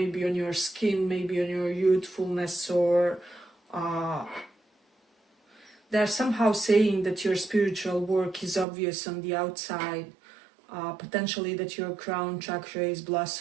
on your skin, maybe on your youthfulness, or they're somehow saying that your spiritual work is obvious on the outside, potentially that your crown chakra is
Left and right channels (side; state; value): left; drops out; at 8.7 s